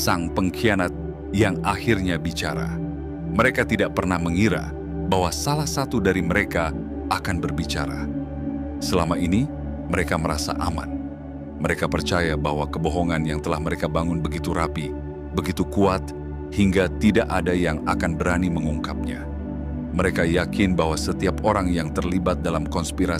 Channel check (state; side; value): identical; both; correlation 1.00